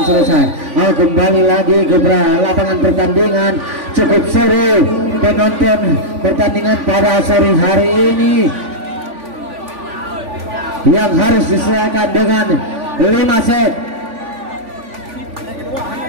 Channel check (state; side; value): late; left; 3.5 ms